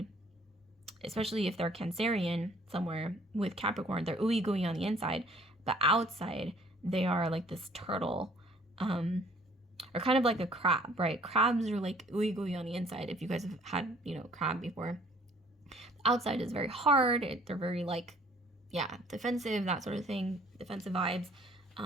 especially if they're Cancerian somewhere with Capricorn, they're ooey gooey on the inside, but outside they are like this turtle, or kind of like a crab, right? Crabs are like ooey gooey on the inside. If you guys have had, you know, crab before, the outside is very hard. They're very like, yeah, defensive, that sort of thing, defensive vibes.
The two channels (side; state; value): both; normal; correlation 0.57